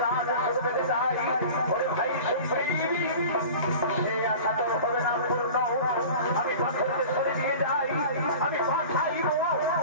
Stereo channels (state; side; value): inverted; both; correlation -0.38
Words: রাজ শুধু পেতে চাই। ওরে ভাই সুপ্রিম, সে আশা তোর হবে না পূর্ণ। আমি পাথরকে সরে দিয়ে যাই, আমি পাঠাইব,